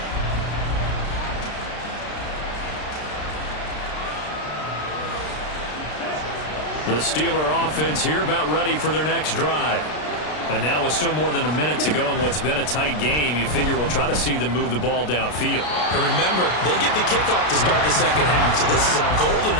The Steeler offense here about ready for their next drive. And now with still more than a minute to go in what's been a tight game, you figure we'll try to see them move the ball downfield. And remember, they get the kickoff to start the second half, so this is a golden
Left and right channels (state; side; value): late; right; 33 ms